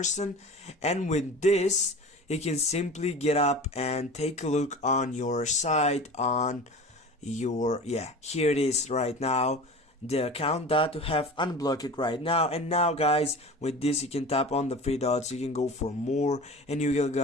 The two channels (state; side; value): normal; both; correlation 0.36